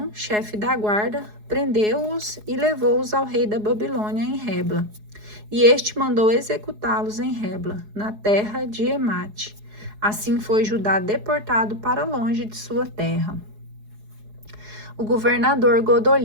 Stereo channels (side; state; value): left; late; 4.8 ms